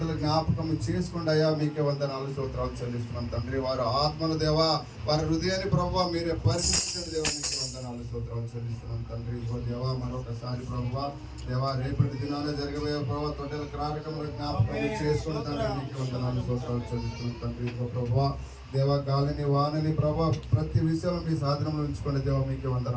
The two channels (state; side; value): identical; both; correlation 1.00